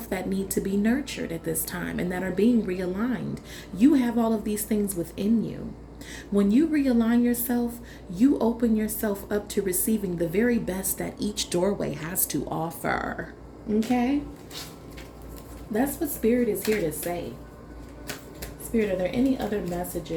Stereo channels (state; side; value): identical; both; correlation 1.00